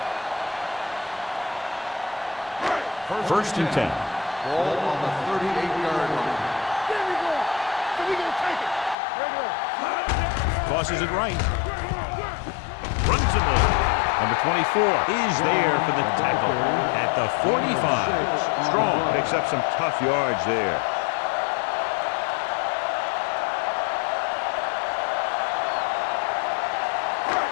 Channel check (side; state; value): right; drops out; at 9.0 s